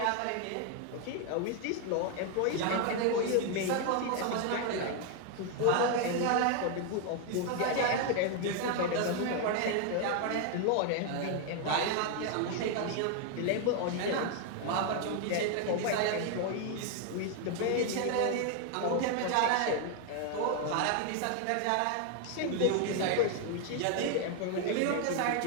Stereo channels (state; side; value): different; both; correlation 0.00